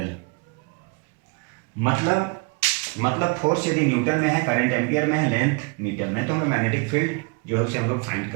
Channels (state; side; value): quieter; left; 30.0 dB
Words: मतलब फोर्स यदि न्यूटन में है, करंट एम्पियर में है, लेंथ मीटर में, तो हमें मैग्नेटिक फील्ड जो है उसे हम लोग फाइंड